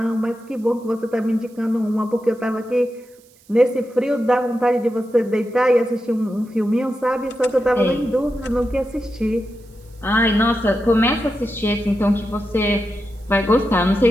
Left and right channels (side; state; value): right; noise; hiss, 30 dB below the sound